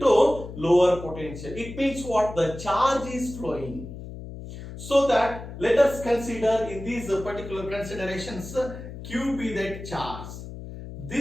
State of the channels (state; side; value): noise; left; hum, 11 dB below the sound